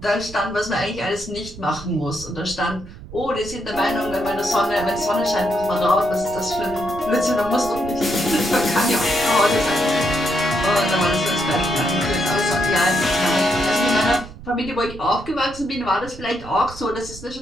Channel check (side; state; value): right; noise; rumble, 15 dB below the sound